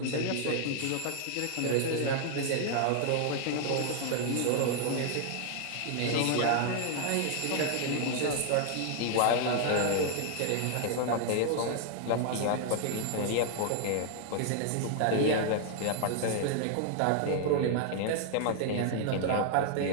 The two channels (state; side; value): different; both; correlation 0.00